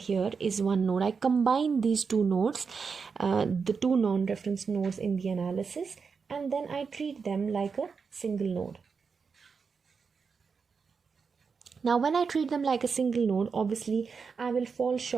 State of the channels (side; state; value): left; quieter; 5.5 dB